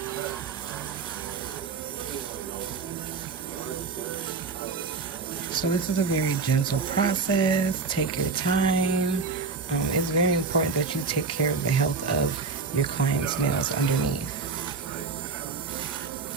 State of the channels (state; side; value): quieter; left; 4.6 dB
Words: So this is a very gentle process. Take your time. It's very important that you take care of the health of your client's nails underneath.